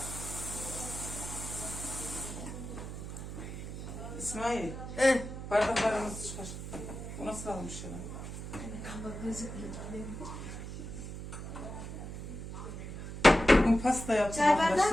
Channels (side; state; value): right; noise; hum, 8 dB below the sound